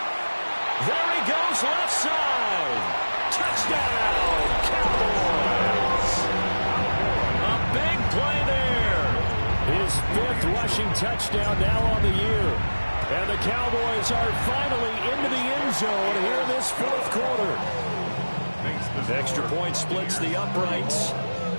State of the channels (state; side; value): inverted; both; correlation -1.00